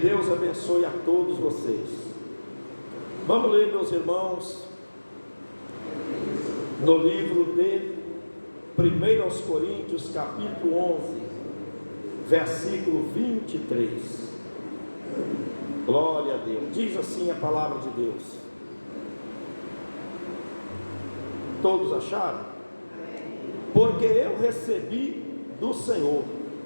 abençoe a todos vocês. Vamos ler, meus irmãos, no livro de 1 Coríntios, capítulo 11, versículo 23. Glória a Deus. Diz assim a palavra de Deus. Todos acharam? Porque eu recebi do Senhor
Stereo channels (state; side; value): inverted; both; correlation -1.00